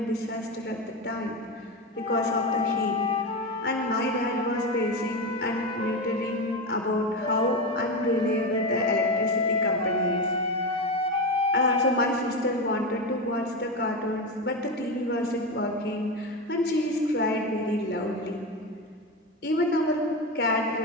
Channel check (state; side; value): normal; both; correlation 0.17